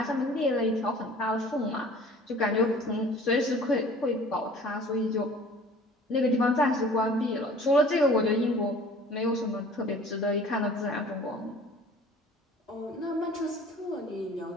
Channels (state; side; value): normal; both; correlation 0.48